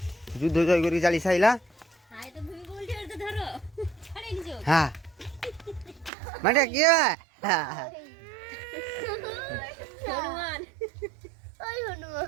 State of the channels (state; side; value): drops out; left; at 6.1 s